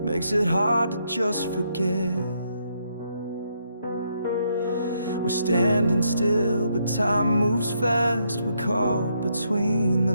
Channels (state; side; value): inverted; both; correlation -0.76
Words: makes it hard to just forget. We're standing still, but time moves fast. We're caught between the